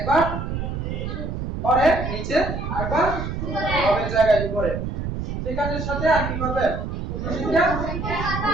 পরে নিচে আরেকবার লবের জায়গায় উপরে। সেখানের সাথে আর কি করবে? পূর্ণ সংখ্যা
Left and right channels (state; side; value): noise; right; rumble, 4 dB below the sound